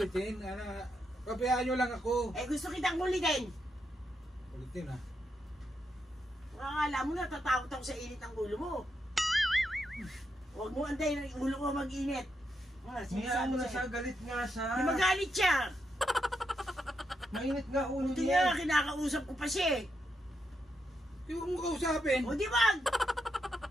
Pabayaan niyo lang ako. Eh gusto kitang kulitin. Kulitin ha. Akala mo natatakot ako sa init ng ulo mo. Huwag mo antayin ang ulo ko mag-init. Hayaan mo na siya, galit nga siya. Di magalit siya. Mainit nga ulo Buti niya. nga, kinakausap ko pa siya eh. Di huwag mo kausapin. O di wag.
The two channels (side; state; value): both; normal; correlation 0.82